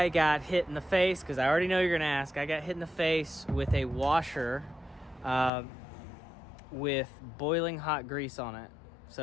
got hit in the face, because I already know you're going to ask. I got hit in the face with a washer with boiling hot grease on it.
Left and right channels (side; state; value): right; drops out; at 5.5 s